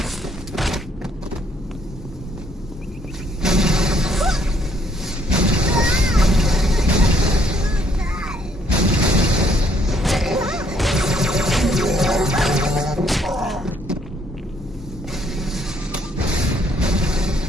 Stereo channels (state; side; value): normal; both; correlation 0.67